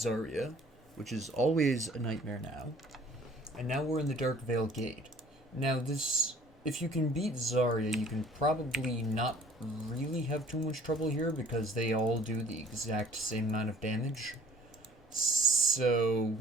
which is always a nightmare now, and now we're in the Darkvale Gate. Now if you can beat Zarya, you can probably not really have too much trouble here because they all do the exact same amount of damage. So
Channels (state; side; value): normal; both; correlation 0.52